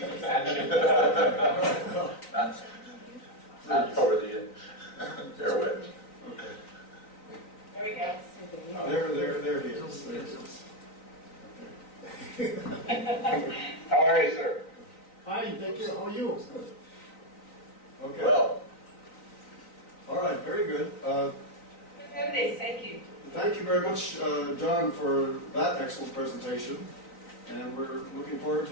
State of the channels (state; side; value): late; right; 3.9 ms